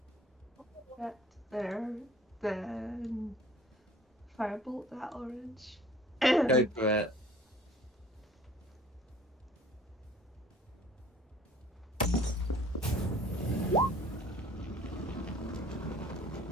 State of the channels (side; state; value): both; normal; correlation 0.51